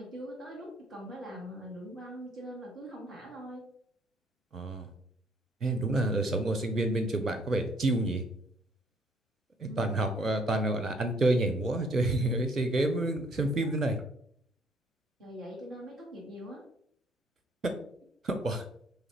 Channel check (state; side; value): normal; both; correlation 0.63